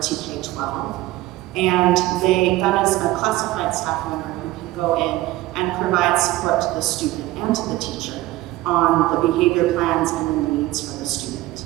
TK-12. And that is a classified staff member who can go in and provide support to the student and to the teacher on the behavior plans and the needs for the student.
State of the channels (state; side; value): quieter; left; 17.4 dB